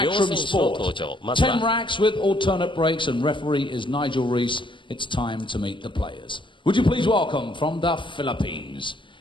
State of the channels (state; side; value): late; right; 0.24 ms